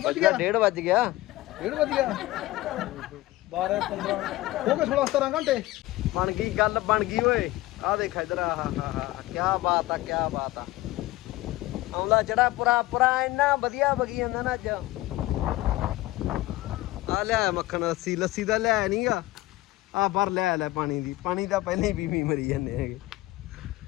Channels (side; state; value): right; quieter; 17.9 dB